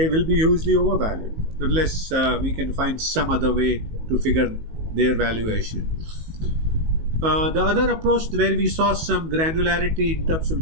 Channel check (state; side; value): late; left; 19 ms